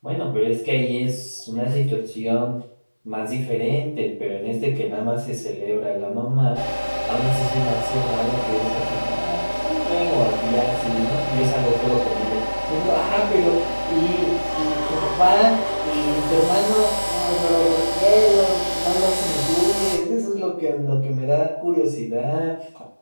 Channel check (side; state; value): both; inverted; correlation -1.00